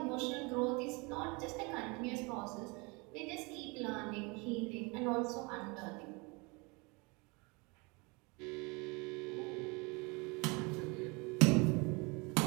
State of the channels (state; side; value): quieter; left; 28.5 dB